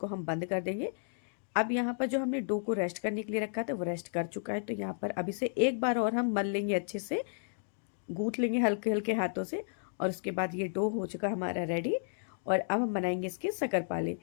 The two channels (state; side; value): silent; right; digital silence